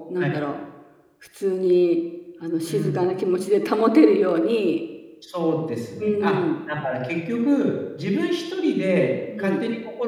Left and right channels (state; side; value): identical; both; correlation 1.00